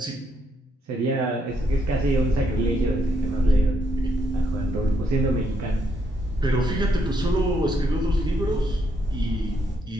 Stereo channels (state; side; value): normal; both; correlation 0.75